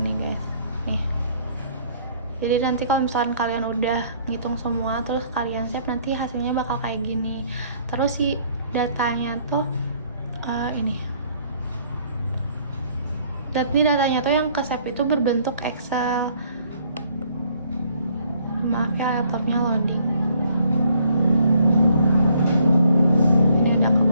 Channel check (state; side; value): inverted; both; correlation -0.63